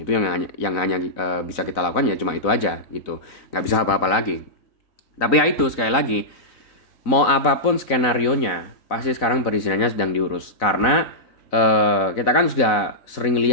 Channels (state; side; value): late; right; 4.0 ms